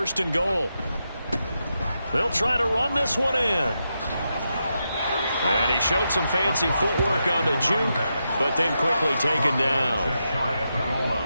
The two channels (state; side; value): inverted; both; correlation -0.86